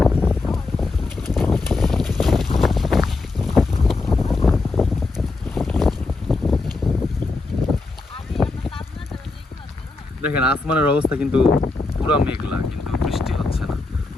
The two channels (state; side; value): quieter; right; 3.5 dB